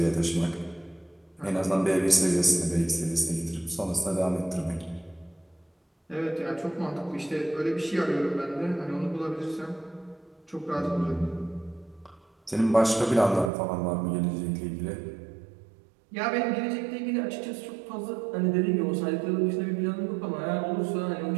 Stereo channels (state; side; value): drops out; left; at 13.5 s